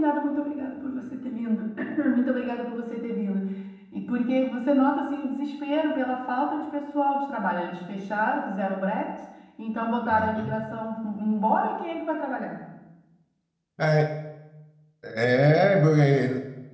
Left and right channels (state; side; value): identical; both; correlation 1.00